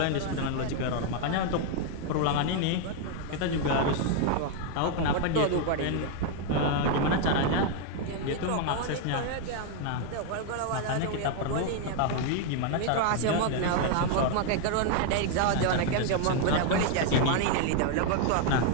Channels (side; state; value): both; different; correlation 0.00